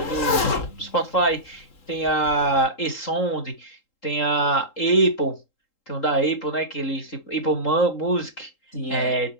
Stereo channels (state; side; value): late; right; 3.8 ms